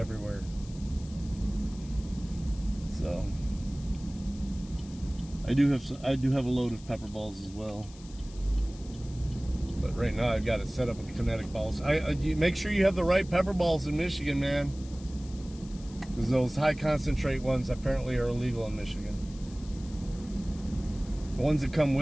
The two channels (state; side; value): noise; left; hiss, 21 dB below the sound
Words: So I do have a load of pepper balls as well, but right now I've got it set up with kinetic balls. You make sure you have the right pepper balls in Michigan, man, because those high concentrate ones apparently are illegal in Michigan. The ones that come